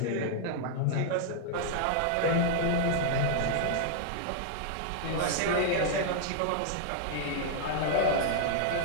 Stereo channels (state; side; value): different; both; correlation -0.01